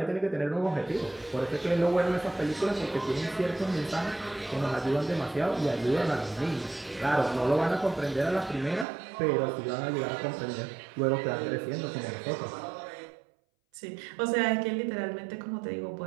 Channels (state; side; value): drops out; left; at 8.8 s